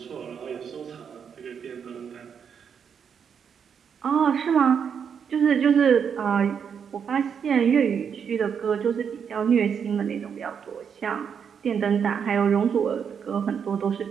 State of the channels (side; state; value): left; quieter; 7.2 dB